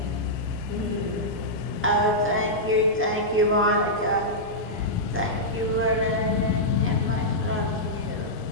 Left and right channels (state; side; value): normal; both; correlation -0.11